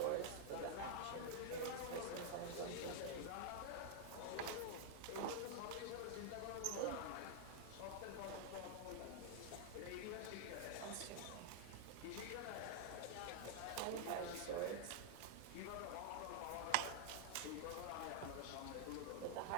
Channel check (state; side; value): different; both; correlation -0.01